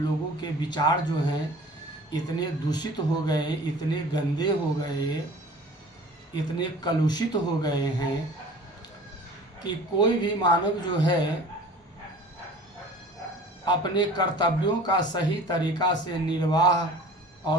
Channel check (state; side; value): normal; both; correlation 0.44